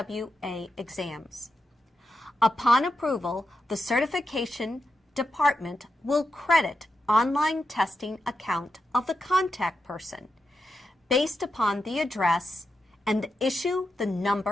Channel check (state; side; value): normal; both; correlation 0.87